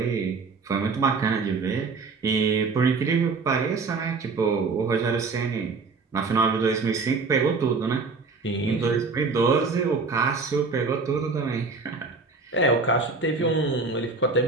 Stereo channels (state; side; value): quieter; left; 4.3 dB